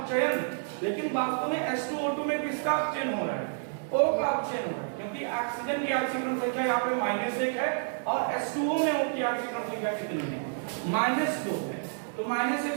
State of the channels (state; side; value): silent; left; digital silence